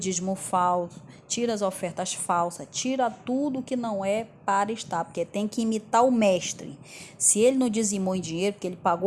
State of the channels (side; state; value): both; identical; correlation 1.00